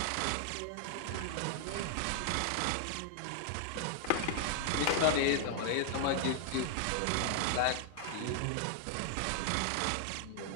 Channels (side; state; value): both; different; correlation 0.00